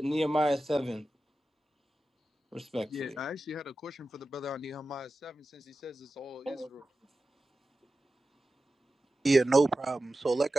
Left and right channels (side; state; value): both; normal; correlation 0.93